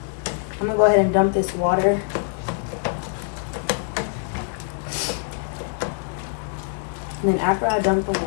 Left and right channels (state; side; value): silent; right; 63 dB below the other